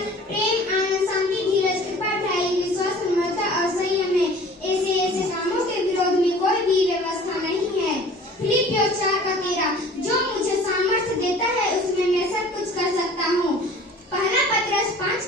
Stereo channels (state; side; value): normal; both; correlation 0.46